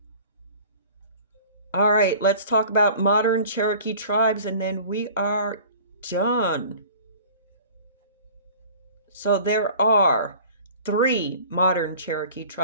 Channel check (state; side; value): inverted; both; correlation -0.46